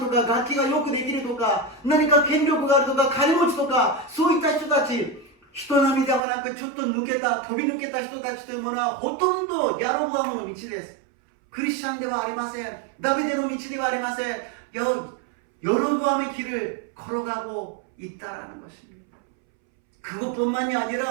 か楽器がよくできるとか何か権力があるとか金持ちとかそういった人たち、人並みではなくちょっと抜けた飛び抜けた人たちというものはほとんどヤロボアムの道です。クリスチャンではありません。ダビデの道ではありません。여로보암의 길을 걸어가고 있다라는 것입니다. 그것뿐만이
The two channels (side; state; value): left; drops out; at 6.2 s